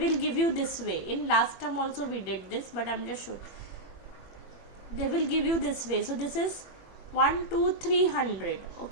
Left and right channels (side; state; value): right; late; 21 ms